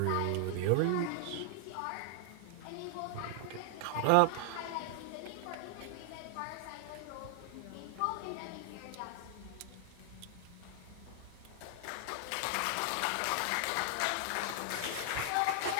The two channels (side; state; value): both; different; correlation 0.00